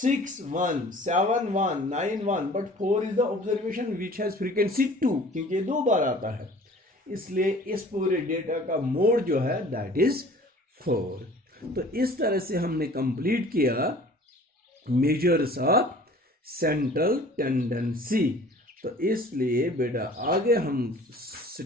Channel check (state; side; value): normal; both; correlation 0.48